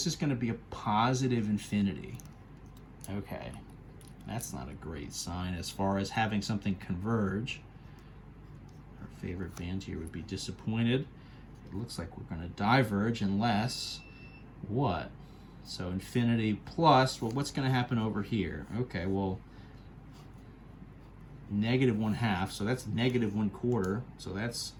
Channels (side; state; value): both; identical; correlation 1.00